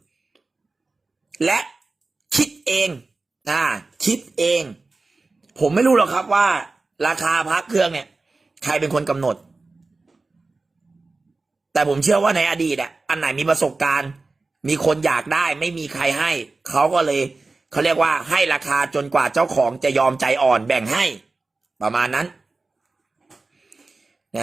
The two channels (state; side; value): quieter; left; 3.6 dB